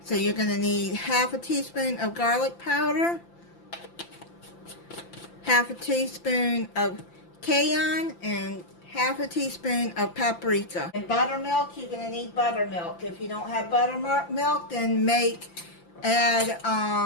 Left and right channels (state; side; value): late; right; 5.8 ms